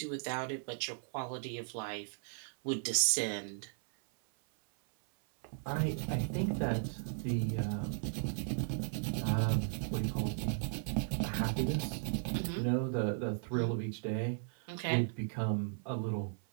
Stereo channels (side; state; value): left; silent; 54 dB below the other